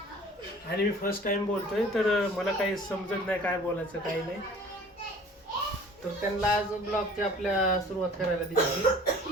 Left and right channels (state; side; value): normal; both; correlation 0.48